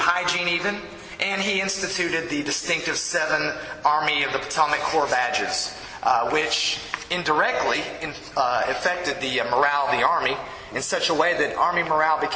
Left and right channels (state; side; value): identical; both; correlation 1.00